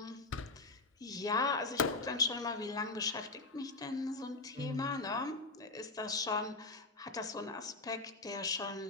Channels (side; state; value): right; quieter; 3.5 dB